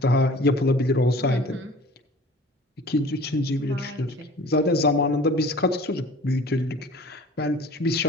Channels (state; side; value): normal; both; correlation 0.45